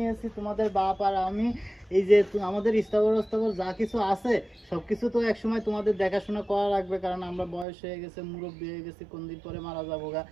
তোমাদের বাপ আর আমি, এই যে আমাদের স্থাবর যা কিছু আছে সবকিছু তো একসময় তোমাদের দেখাশোনা করা লাগবে, কারণ আমরা বয়স হয়ে গেছে, মুরব্বী হয়ে গেছি, কোন দিন পরে মারা যাবো গা।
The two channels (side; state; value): left; drops out; at 7.7 s